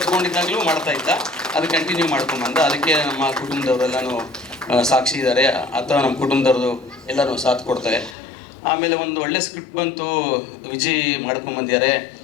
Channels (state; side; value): drops out; right; at 8.2 s